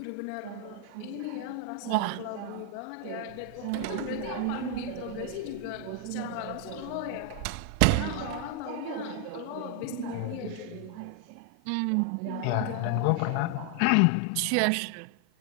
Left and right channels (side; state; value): both; different; correlation 0.00